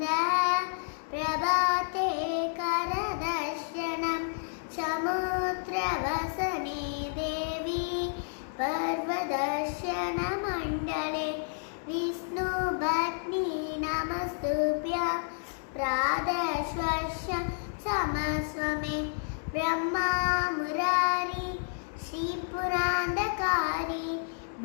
பிரபாதே கரதர்ஷனம் சமுத்திரவசனே தேவி पर्वदर्शन मंडले विष्णु भट्नी नमस्तुभ्य प्रादश्वस्य समस्वमे ब्रह्मा मुरारी श्रीपुरांधकारी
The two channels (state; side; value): silent; right; digital silence